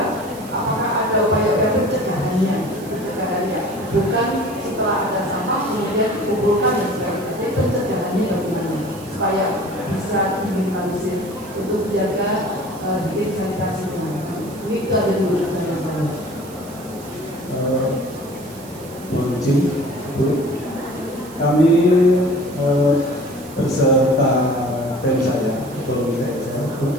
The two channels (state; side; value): noise; right; hiss, 20 dB below the sound